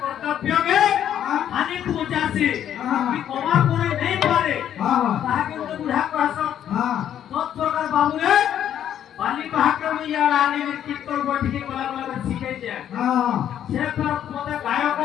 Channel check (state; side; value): quieter; right; 10.2 dB